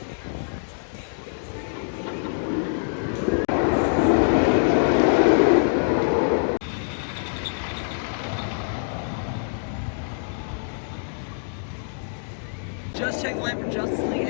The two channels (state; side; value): silent; right; digital silence